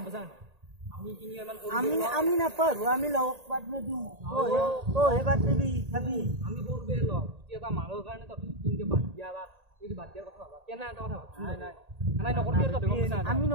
বসান আমি কিনি মান আমি না পারু আমি লওক বাদ মে দু তো হে বাদ দেবি খাবি আমি করবে ল কি এটা মালর কারণে তো কিনকে বাদ দিয়া বা এই বাদ দিয়ার কথা ভাবা কেন এটা কথা ভাবছ নাই নাই নাই নকরবি তো দেখো আমি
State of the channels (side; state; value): left; late; 1.8 ms